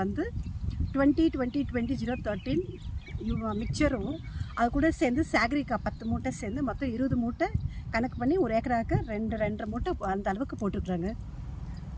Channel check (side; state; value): both; identical; correlation 1.00